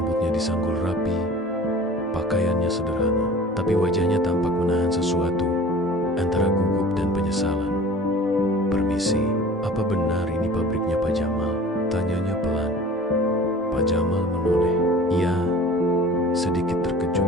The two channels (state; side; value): normal; both; correlation 0.44